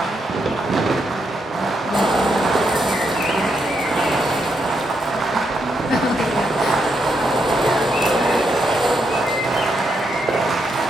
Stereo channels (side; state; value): both; normal; correlation 0.80